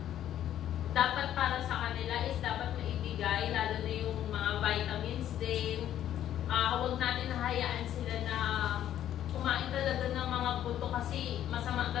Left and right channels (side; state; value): right; quieter; 11.3 dB